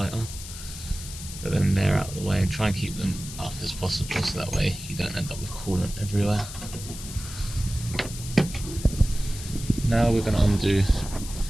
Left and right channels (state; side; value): noise; left; hiss, 11 dB below the sound